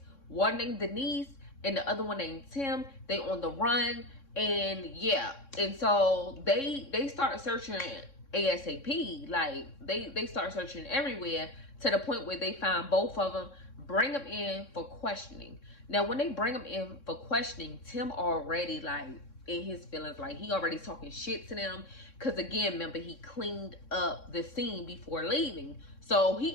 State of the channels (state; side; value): late; right; 3.6 ms